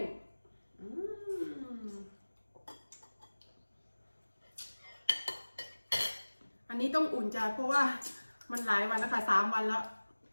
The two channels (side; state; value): both; inverted; correlation -1.00